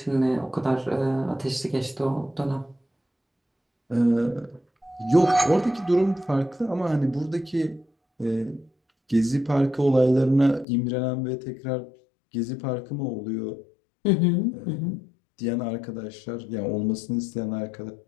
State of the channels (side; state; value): right; drops out; at 10.7 s